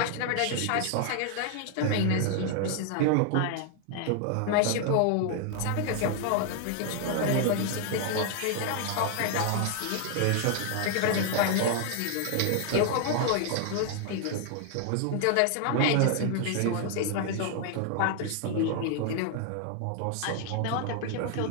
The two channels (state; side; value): different; both; correlation 0.00